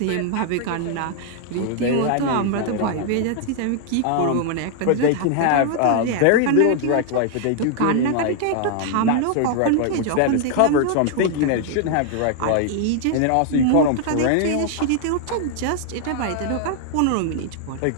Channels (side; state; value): both; different; correlation 0.00